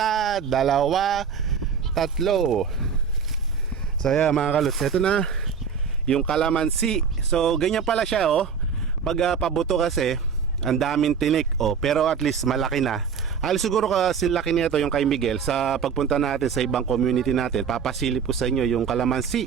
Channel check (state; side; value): quieter; left; 6.5 dB